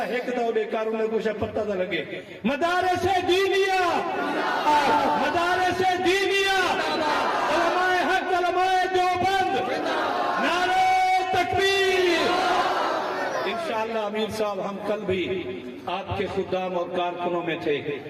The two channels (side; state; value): both; identical; correlation 1.00